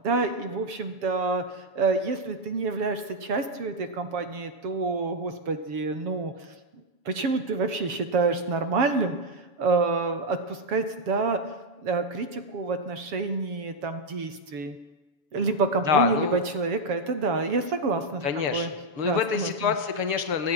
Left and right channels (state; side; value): late; left; 7.4 ms